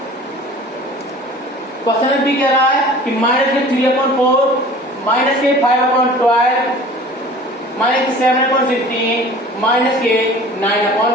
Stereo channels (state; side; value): normal; both; correlation 0.44